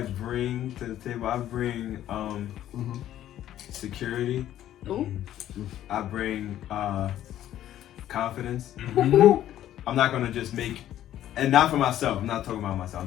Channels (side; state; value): right; quieter; 12.2 dB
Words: bring to the table? I bring security. Ooh. I bring confidence. Mhm. I'm not gonna just make, and not for myself. I'm not talking about myself. I'm